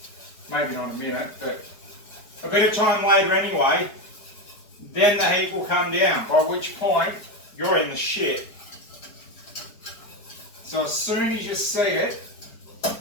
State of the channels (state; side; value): late; right; 4.8 ms